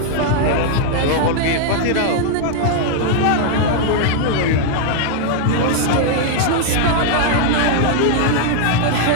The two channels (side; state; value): both; different; correlation 0.00